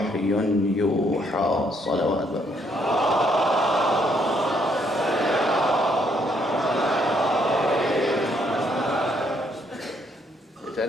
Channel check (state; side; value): normal; both; correlation 0.70